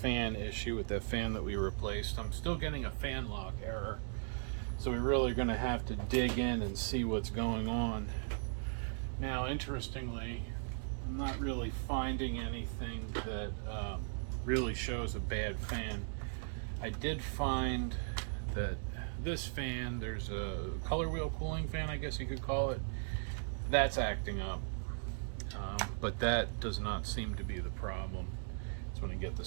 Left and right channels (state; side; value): silent; left; digital silence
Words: issue with that fan that we replaced. I'm still getting a fan lock error, so we're really going to have to dig in and see what's going on. Now, interestingly, I'm not really finding anything that really shows a bad fan. I did find that this fan, there's a color wheel cooling fan, I guess you could call it, that's acting up. But that does not seem to be the problem. Just want to get the